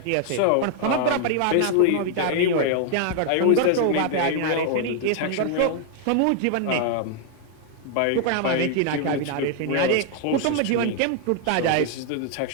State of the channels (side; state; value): both; different; correlation 0.00